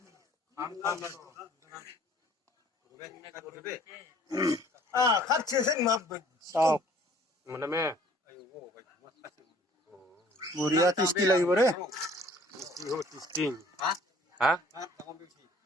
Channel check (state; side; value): normal; both; correlation 0.55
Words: বঢ়িয়া টেষ্টি লাগিব রে।